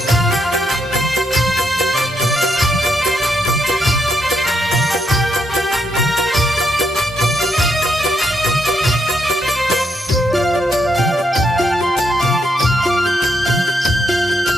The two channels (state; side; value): normal; both; correlation 0.78